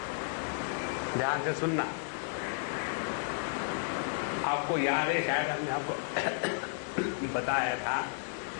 ध्यान से सुनना। आपको याद है, शायद हमने आपको बताया था,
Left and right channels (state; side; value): silent; right; digital silence